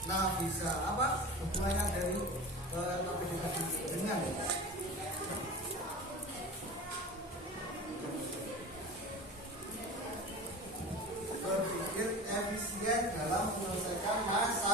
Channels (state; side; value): normal; both; correlation 0.33